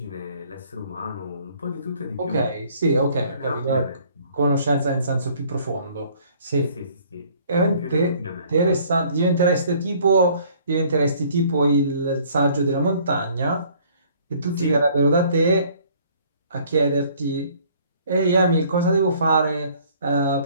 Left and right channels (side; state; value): both; inverted; correlation -0.58